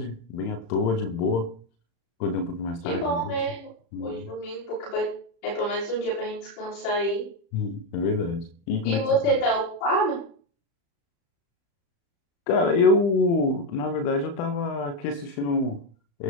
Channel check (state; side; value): late; right; 35 ms